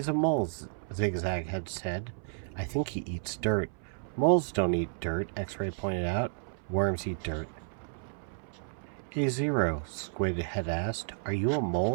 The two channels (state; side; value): silent; left; 57 dB below the other